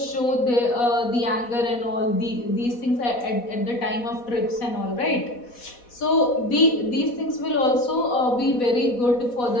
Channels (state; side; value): late; right; 4.1 ms